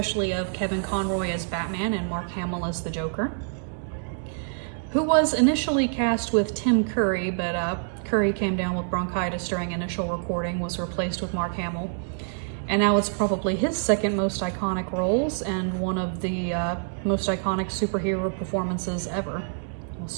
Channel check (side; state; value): left; silent; digital silence